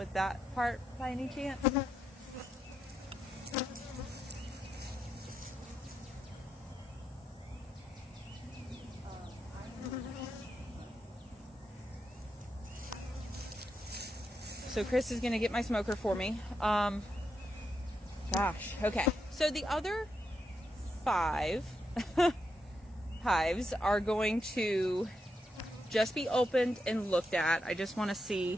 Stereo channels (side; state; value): both; normal; correlation 0.83